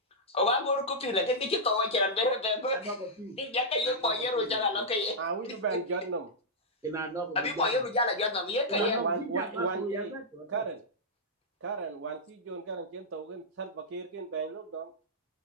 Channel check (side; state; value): both; normal; correlation -0.09